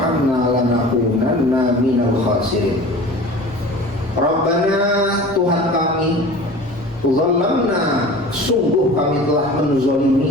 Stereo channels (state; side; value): noise; left; rumble, 24 dB below the sound